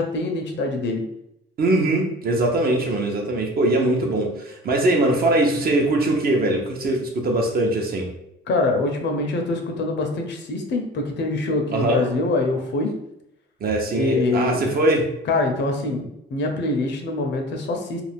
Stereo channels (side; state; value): both; normal; correlation 0.38